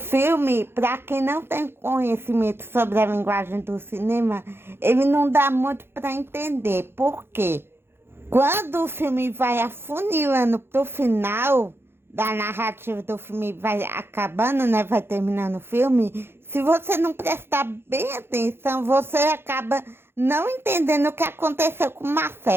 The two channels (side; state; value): left; late; 0.11 ms